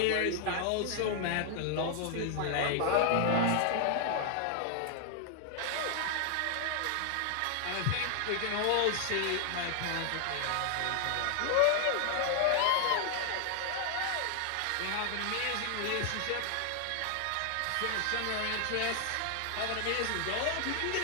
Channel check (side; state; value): both; different; correlation 0.00